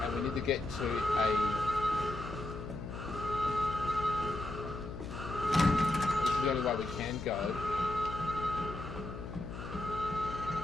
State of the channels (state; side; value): noise; left; hum, 9 dB below the sound